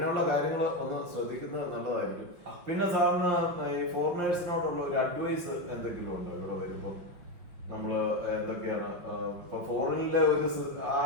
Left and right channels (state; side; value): late; left; 5.9 ms